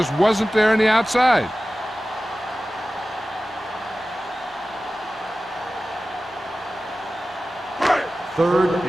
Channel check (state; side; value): normal; both; correlation 0.96